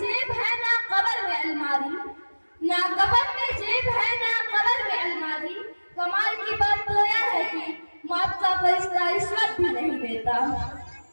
है ना कब्र में अलमारी, ना कफन में जेब है ना कब्र में अलमारी। कमाल की बात तो यह है कि मौत का फरिश्ता रिश्वत भी नहीं देता।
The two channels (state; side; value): inverted; both; correlation -1.00